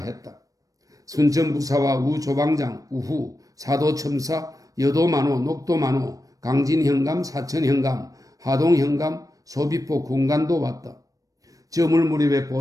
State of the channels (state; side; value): late; left; 0.17 ms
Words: 순천부사와 우조방장, 우후, 사도첨사, 여도만호, 녹도만호, 강진현감, 사천현감, 하동현감, 소비포 군관도 왔다. 저물 무렵에